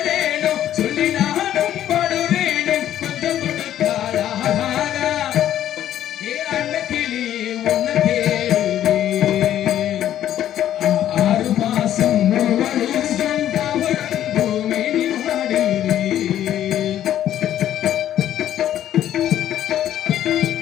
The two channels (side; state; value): right; quieter; 11.5 dB